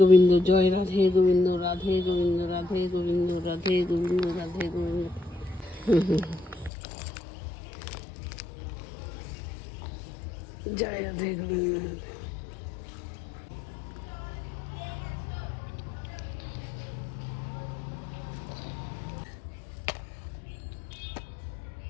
জয় রাধে গোবিন্দ, রাধে গোবিন্দ, রাধে গোবিন্দ, রাধে গোবিন্দ, রাধে গোবিন্দ। জয় রাধে গোবিন্দ।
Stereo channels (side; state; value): right; drops out; at 6.7 s